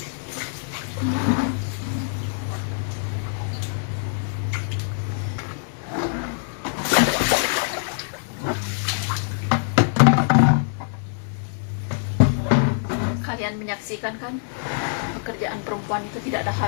Kalian menyaksikan kan, pekerjaan perempuan itu tidak ada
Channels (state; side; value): silent; right; digital silence